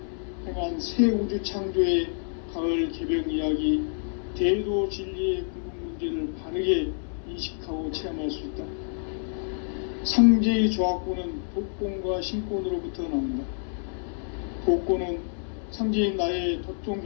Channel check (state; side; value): silent; right; 60 dB below the other